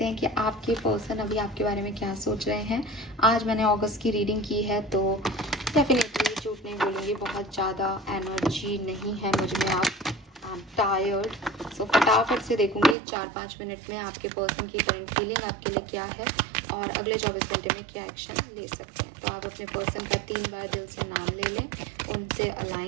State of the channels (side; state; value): left; drops out; at 13.0 s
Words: हैं कि आपके पर्सन अभी आपके बारे में क्या सोच रहे हैं। आज मैंने अगस्त की रीडिंग की है तो डेफिनेटली झूठ नहीं बोलूँगी, बहुत ज़्यादा एनर्जी नहीं है मुझ में। आप टायर्ड, सो फटाफट से देखूंगी 4-5 मिनट में आपके पर्सन की करंट फीलिंग आपके लिए क्या है और अगले 24 घंटे में क्या एक्शन ले सकते हैं। तो आप अपने पर्सन का 3 बार दिल से नाम ले लें, उनसे